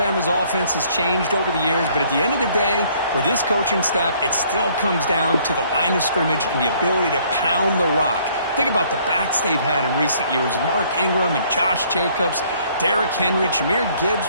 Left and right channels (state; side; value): inverted; both; correlation -0.62